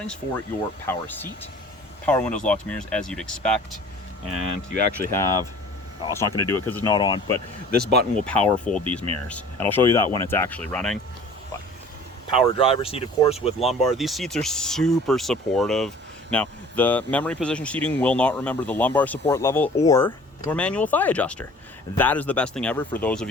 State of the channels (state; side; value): normal; both; correlation 0.47